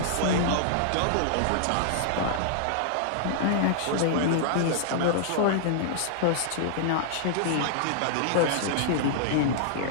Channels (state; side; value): different; both; correlation -0.01